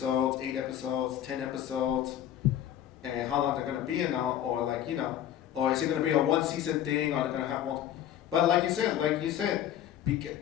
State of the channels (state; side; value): quieter; right; 11.1 dB